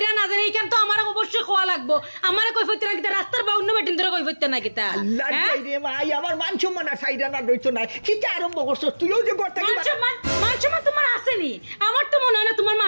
না যাইরা এইখান তো আমার অবশ্যই খাওয়া লাগবো আমার কইফত না কিতা রাস্তার বা অন্য বেটিন ধরে কইফত না কিতা আল্লাহ রে ভাই আমার মান সম্মান আর সাইডা না রইতো না কিতা আরম্ভ করছ তুইও যে করতে কি মান সম্মান তোমার আসেনি আমার তো মনে হয় না তোমার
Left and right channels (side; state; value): both; inverted; correlation -1.00